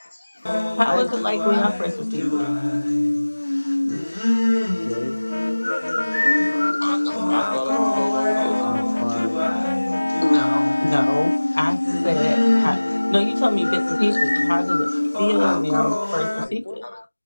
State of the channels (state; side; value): inverted; both; correlation -1.00